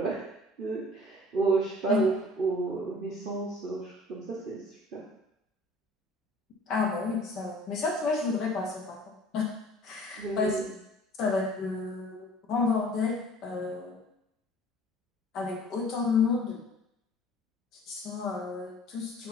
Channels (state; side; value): normal; both; correlation 0.50